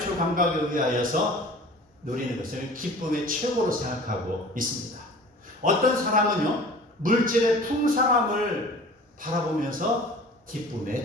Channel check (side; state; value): both; normal; correlation 0.43